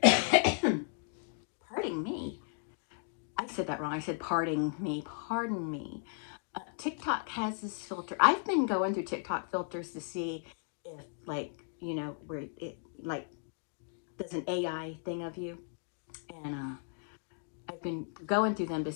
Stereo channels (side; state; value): right; silent; 54 dB below the other